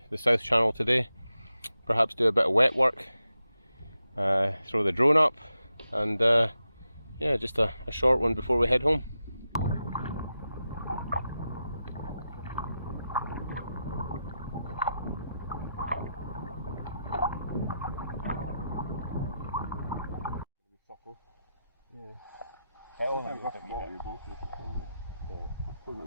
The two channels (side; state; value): both; inverted; correlation -0.88